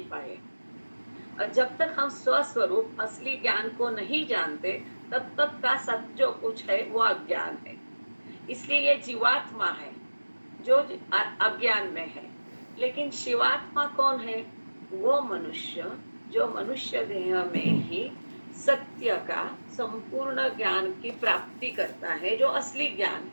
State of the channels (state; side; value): inverted; both; correlation -1.00